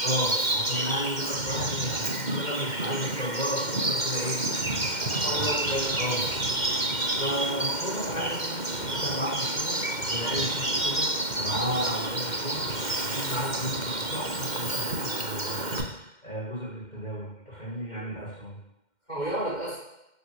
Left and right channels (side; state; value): right; late; 2.1 ms